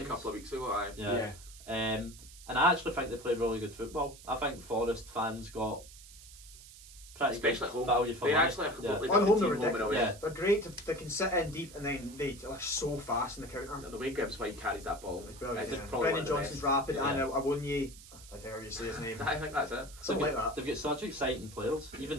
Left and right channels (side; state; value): right; noise; hiss, 18 dB below the sound